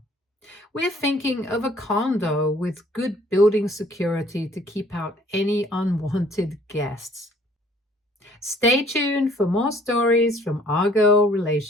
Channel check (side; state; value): both; normal; correlation 0.58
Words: We're thinking of a condo with good building security to keep out any unwanted guests. Stay tuned for more stories from our girl